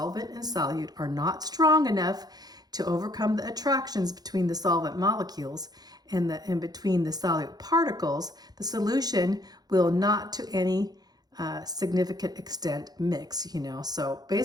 and solute are not strong enough to overcome the attractions between the solvent molecules and between the solute particles, the solution will not to any significant extent mix, So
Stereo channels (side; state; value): left; late; 0.19 ms